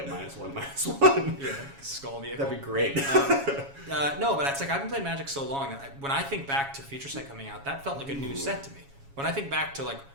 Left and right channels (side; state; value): left; late; 7.3 ms